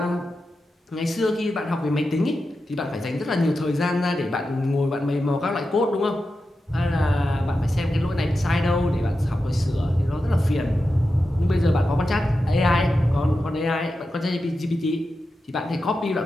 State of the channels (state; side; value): normal; both; correlation 0.90